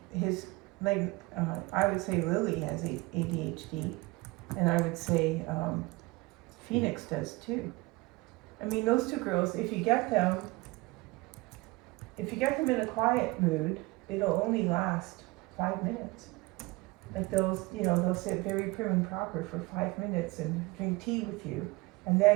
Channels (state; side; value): quieter; left; 22.6 dB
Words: his I would say Lily has ADHD, and I would say Phoenix does too. I mean, those two girls, if you get them in a quiet mood, it'll only last 5 minutes. Like they'll sit very prim and proper for 5 minutes and drink tea with you, and